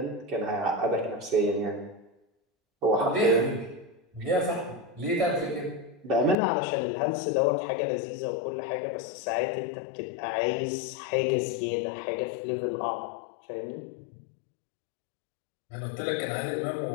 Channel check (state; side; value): drops out; right; at 6.4 s